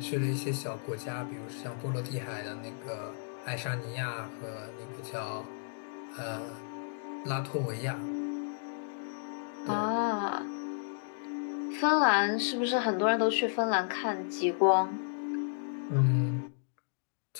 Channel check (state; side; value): silent; right; digital silence